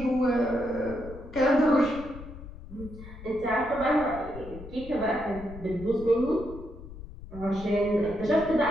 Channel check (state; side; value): noise; left; rumble, 14 dB below the sound